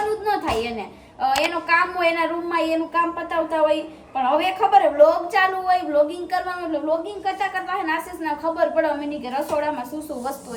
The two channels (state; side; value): identical; both; correlation 1.00